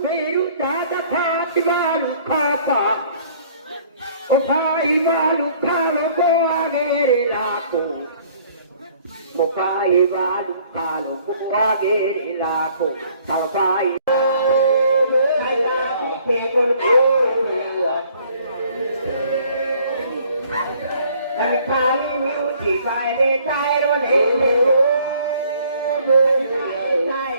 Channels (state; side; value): inverted; both; correlation -0.58